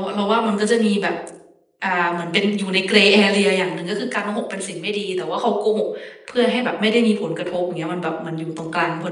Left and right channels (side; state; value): both; identical; correlation 1.00